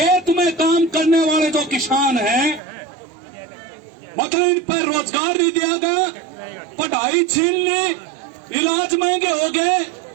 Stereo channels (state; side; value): drops out; left; at 2.6 s